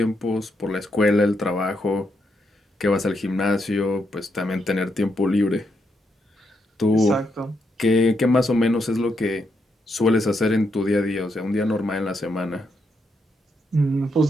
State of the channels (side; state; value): both; normal; correlation 0.80